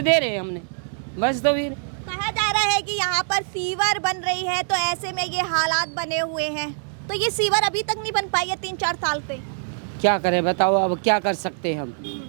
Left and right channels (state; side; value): silent; left; digital silence